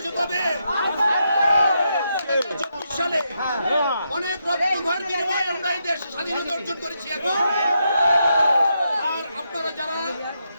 কবে? 1924 সালে। অনেক রক্তক্ষয়ের বিনিময়ে আমরা এই দেশ স্বাধীনতা অর্জন করেছি। এখন আর আপনারা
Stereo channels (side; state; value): both; inverted; correlation -0.81